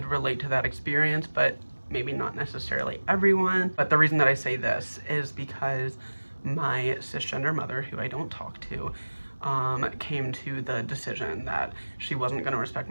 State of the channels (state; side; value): inverted; both; correlation -1.00